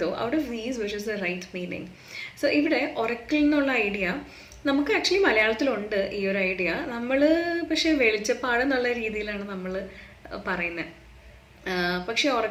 though out of these which is the right meaning. So ഇവിടെ oracle എന്നുള്ള ഐഡിയ നമുക്ക് ആക്ച്വലി മലയാളത്തിലുണ്ട് ഈ ഒരു ഐഡിയ. നമ്മൾ പക്ഷേ വെളിച്ചപ്പാട് എന്നുള്ള രീതിയിലാണ് നമ്മൾ പറയുന്നത്. പക്ഷേ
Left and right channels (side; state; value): both; identical; correlation 1.00